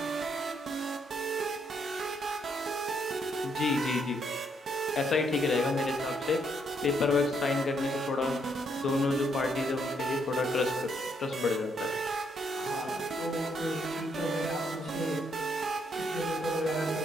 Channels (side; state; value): both; normal; correlation 0.74